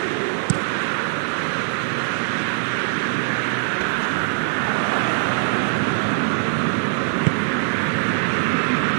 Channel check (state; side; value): silent; left; 63 dB below the other